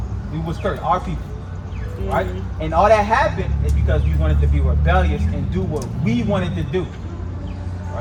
We was cursed, our people, right? And all that happened is because we wanted to be rebellious and do what we wanted to do.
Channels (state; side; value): identical; both; correlation 1.00